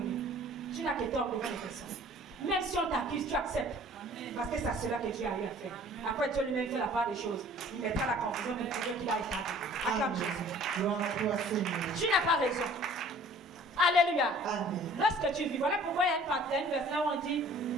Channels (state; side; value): normal; both; correlation 0.51